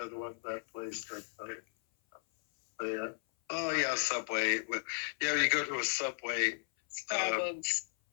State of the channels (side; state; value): right; silent; 54 dB below the other